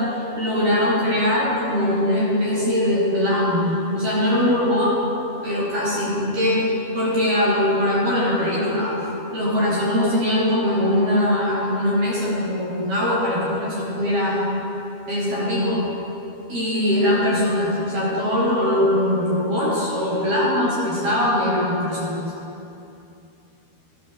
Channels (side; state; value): left; late; 12 ms